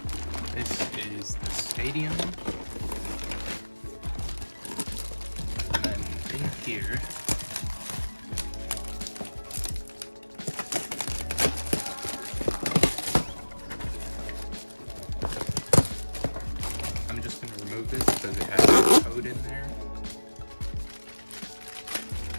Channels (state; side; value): inverted; both; correlation -1.00